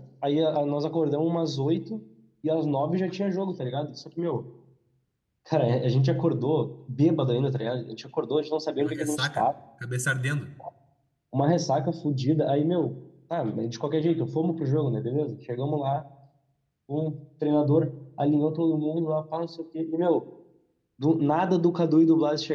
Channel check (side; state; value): both; identical; correlation 1.00